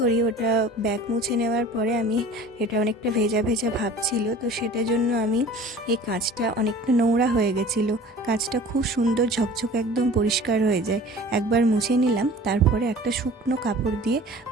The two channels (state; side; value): normal; both; correlation 0.43